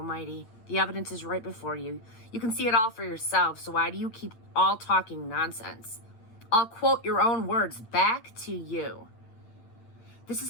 The evidence is right before you. You can see it all for yourself, so why do you keep all talking nonsense? I'll quote your own words back to you. This is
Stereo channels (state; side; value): late; right; 8.6 ms